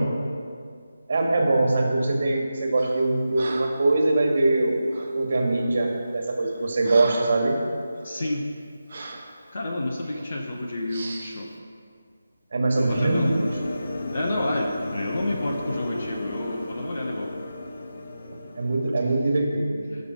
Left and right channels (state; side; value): inverted; both; correlation -0.91